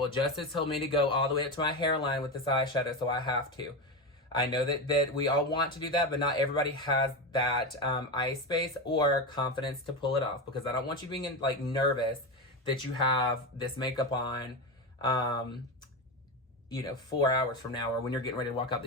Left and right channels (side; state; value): both; normal; correlation 0.18